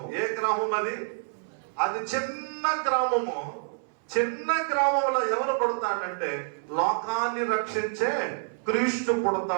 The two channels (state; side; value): silent; left; 60 dB below the other